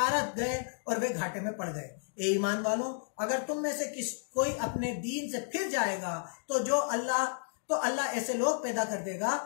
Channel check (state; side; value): silent; right; digital silence